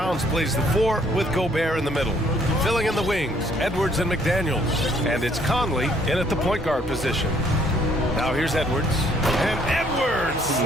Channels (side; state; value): both; normal; correlation 0.64